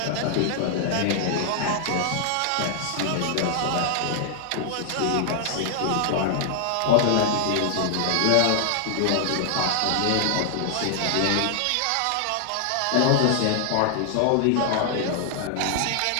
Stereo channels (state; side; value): different; both; correlation 0.00